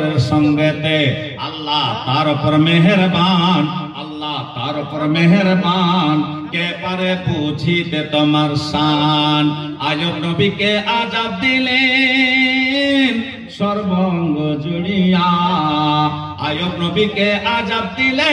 সঙ্গেতে। আল্লাহ তার উপর মেহেরবান, আল্লাহ তার উপর মেহেরবান, কে পারে বুঝিতে তোমার শান। আয়ুব নবীকে আযাব দিলেন সর্বঙ্গ জুড়িয়া, আয়ুব নবীকে আযাব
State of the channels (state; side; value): identical; both; correlation 1.00